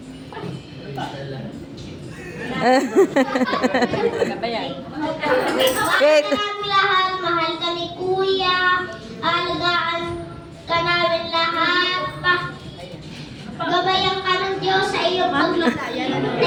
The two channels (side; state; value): both; identical; correlation 1.00